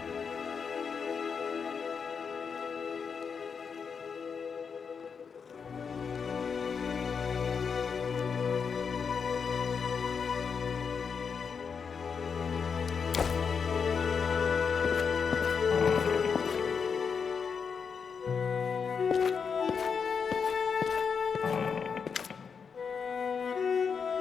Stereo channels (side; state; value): right; quieter; 6.1 dB